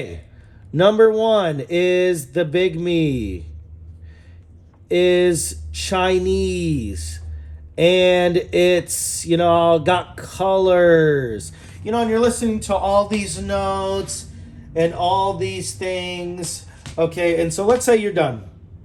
number 1 is the Bigme is Chinese. And it's, you know, got colors. You know, and you're listening to all these notes and all these things. Okay, and so let's say you're done.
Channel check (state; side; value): identical; both; correlation 1.00